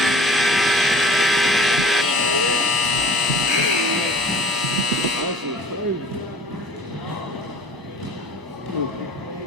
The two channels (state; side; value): normal; both; correlation 0.47